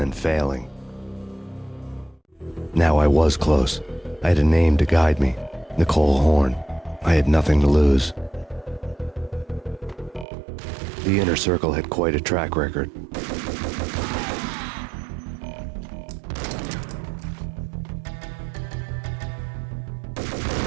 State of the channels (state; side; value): drops out; left; at 10.2 s